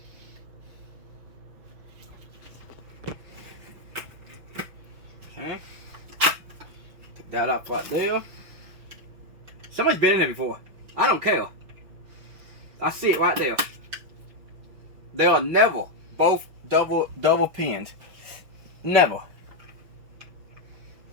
Okay. Take that off right there. Somebody's been in there before. I don't care. I see it right there. They are never both double pinned. Never.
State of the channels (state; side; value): late; left; 5.7 ms